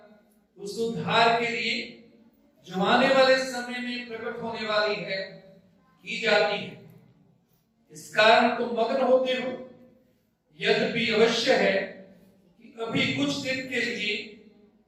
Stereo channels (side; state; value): both; identical; correlation 1.00